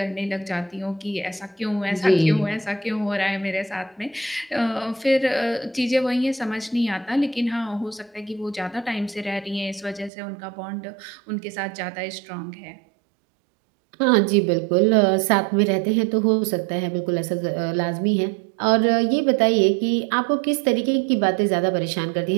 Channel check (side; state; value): left; drops out; at 10.1 s